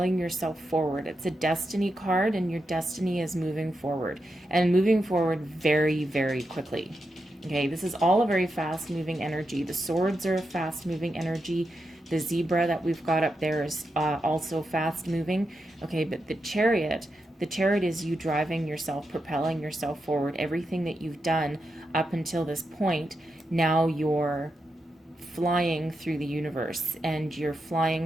yourself forward. It's a destiny card, and your destiny is moving forward, and moving forward very, very quickly. Okay, this is all a very fast-moving energy. The swords are a fast-moving energy. The zebra that we've got up there is also fast-moving. Okay, but the chariot is you driving yourself, propelling yourself forward. Everything that you've done up until this point, now you're flying through the universe, and you're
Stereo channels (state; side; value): normal; both; correlation 0.87